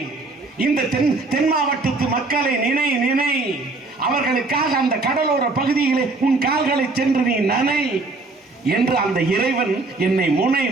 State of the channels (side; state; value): left; quieter; 3.4 dB